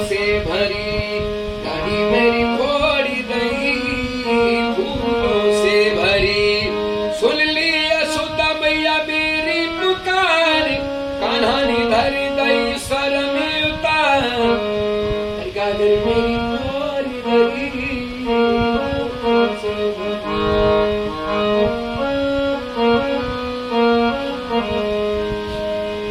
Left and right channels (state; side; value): identical; both; correlation 1.00